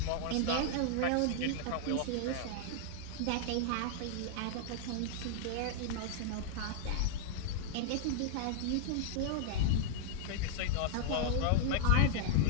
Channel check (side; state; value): both; different; correlation 0.00